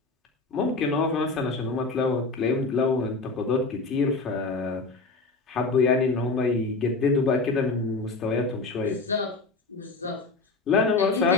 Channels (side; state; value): right; quieter; 3.7 dB